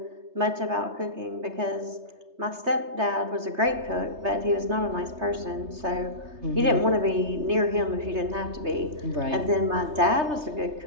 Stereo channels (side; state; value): left; late; 3.3 ms